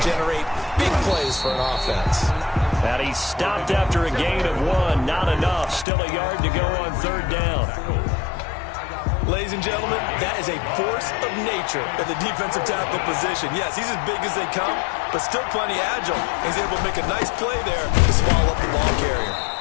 generate big plays for an offense. And he stopped after a gain of 1. Not enough. Still a yard to go on third down. Ladies and gentlemen, that is a force of nature at the defensive tackle position. Yes, he's as big as they come, but still plenty agile. He's able to make a nice play there to swallow up the ball carrier.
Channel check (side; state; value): right; drops out; at 5.9 s